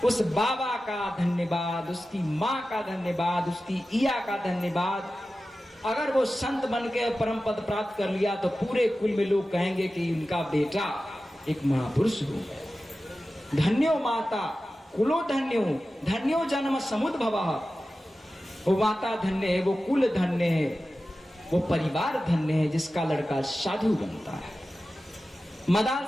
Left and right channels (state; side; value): normal; both; correlation 0.94